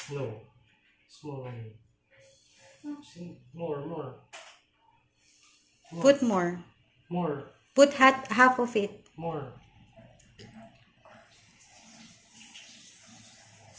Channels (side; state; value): both; identical; correlation 1.00